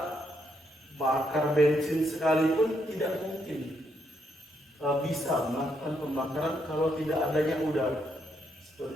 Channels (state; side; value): normal; both; correlation 0.76